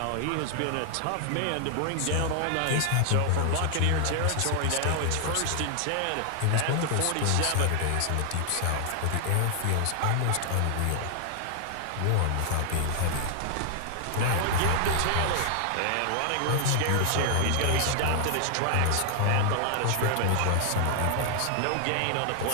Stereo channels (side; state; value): both; different; correlation 0.00